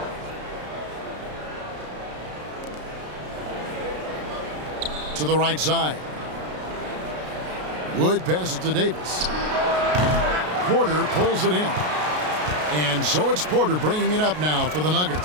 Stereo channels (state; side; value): late; left; 33 ms